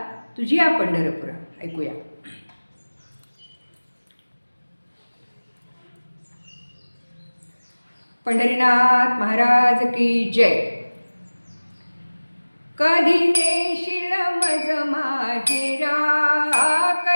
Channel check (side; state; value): both; inverted; correlation -1.00